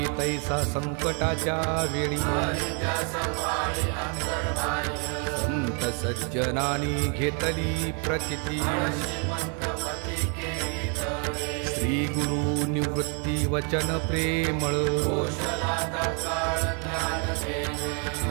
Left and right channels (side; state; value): left; quieter; 37.6 dB